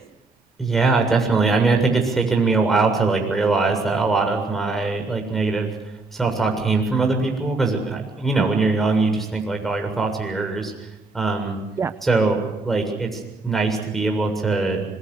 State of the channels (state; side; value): quieter; left; 3.4 dB